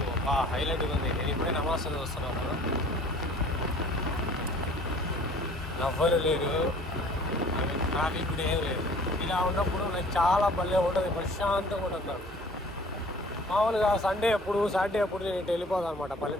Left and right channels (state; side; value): normal; both; correlation 0.51